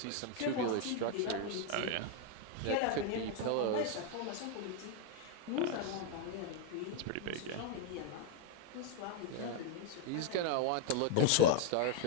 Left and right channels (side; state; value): both; different; correlation 0.00